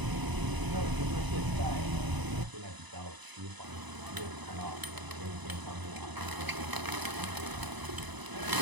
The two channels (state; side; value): late; left; 1.0 ms